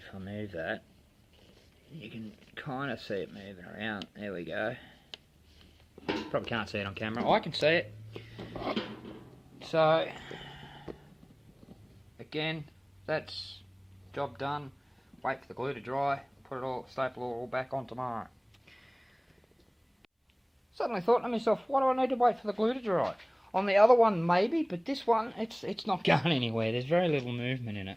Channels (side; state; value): both; identical; correlation 1.00